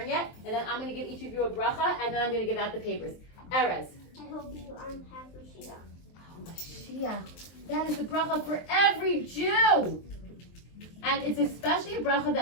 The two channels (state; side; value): late; right; 23 ms